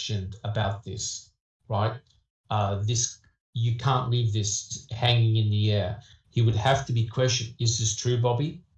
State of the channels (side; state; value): both; identical; correlation 1.00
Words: about this, right? You can't leave this hanging in the air. He would have to be questioned. Is this true, Bobby?